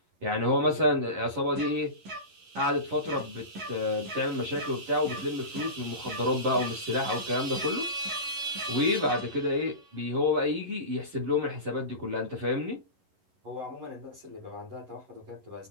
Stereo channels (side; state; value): left; late; 11 ms